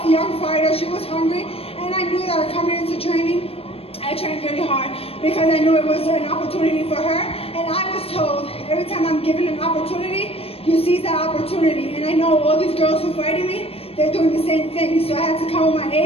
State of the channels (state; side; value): late; right; 0.28 ms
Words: young fighter. She was hungry, and I knew that coming into training, I trained really hard because I knew it was an opportunity for her. And I was told every time I'm given an opportunity, you seize that opportunity. And I know all these girls who fighting me, they're doing the same thing. So I had to come with my